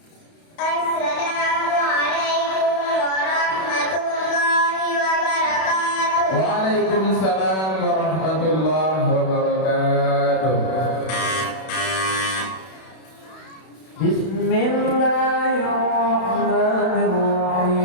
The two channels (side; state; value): right; late; 32 ms